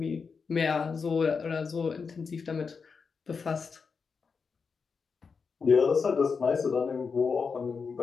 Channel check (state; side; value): quieter; right; 5.3 dB